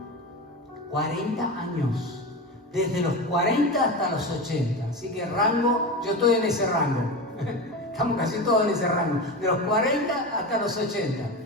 40 años. Desde los 40 hasta los 80. Así que rango, yo estoy en ese rango. Estamos casi todos en ese rango. De los 40 hasta los 80.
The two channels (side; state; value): both; normal; correlation 0.24